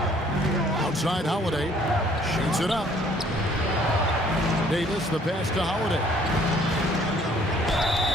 Outside Holiday. Shoots it up. Davis, the pass to Holiday.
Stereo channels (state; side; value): normal; both; correlation 0.59